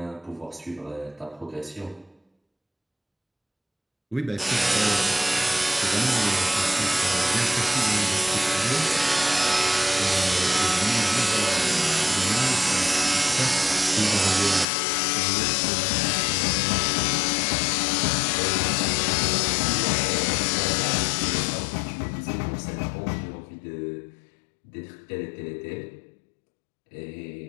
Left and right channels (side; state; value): right; drops out; at 14.7 s